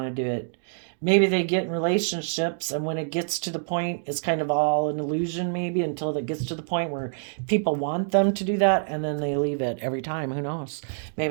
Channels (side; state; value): left; silent; 61 dB below the other